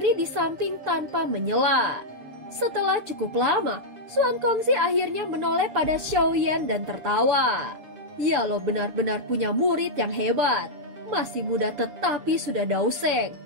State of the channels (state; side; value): late; left; 7.1 ms